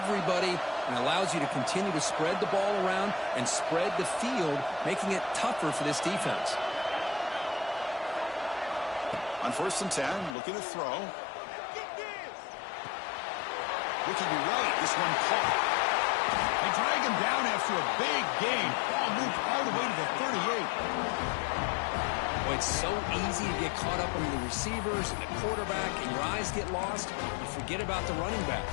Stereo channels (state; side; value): drops out; right; at 10.4 s